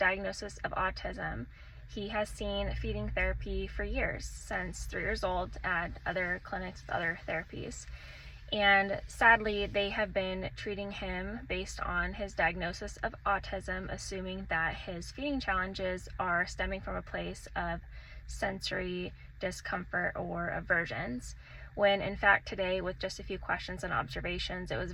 of autism. He has seen feeding therapy for years, since 3 years old, at other clinics with other therapies. And sadly, they have been treating him based on his diagnosis of autism, assuming that his feeding challenges are stemming from a place of sensory discomfort or aversions. When in fact today, with just a few questions and observations, it was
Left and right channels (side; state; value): both; identical; correlation 1.00